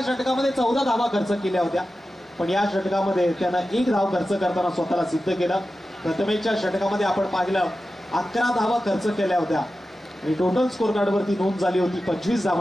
षटकामध्ये 14 धावा खर्च केल्या होत्या, पण या षटकामध्ये त्यांना 1 धाव खर्च करताना स्वतःला सिद्ध केलं. प्रथमेच्या षटकामध्ये आपण पाहिलं 11 धावा खर्च केल्या होत्या आणि टोटल स्कोर कार्डवरती नोंद झाली होती 25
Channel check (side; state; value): both; normal; correlation 0.93